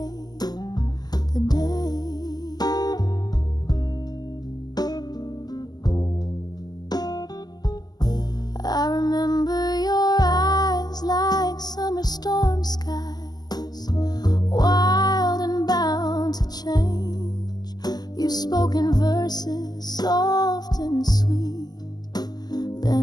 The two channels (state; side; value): late; right; 0.20 ms